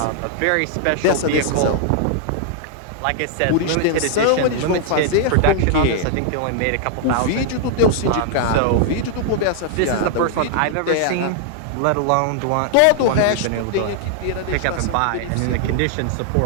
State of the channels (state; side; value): different; both; correlation -0.01